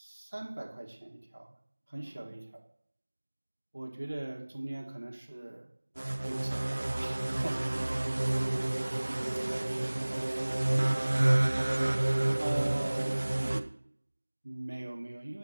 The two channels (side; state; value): both; inverted; correlation -1.00